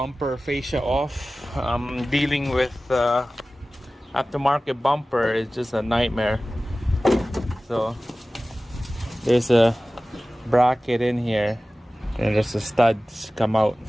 fascia off. Dealing with aftermarket bumper is just a nightmare. So there's a bracket in here and there's the studs come out,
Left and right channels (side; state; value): both; normal; correlation 0.97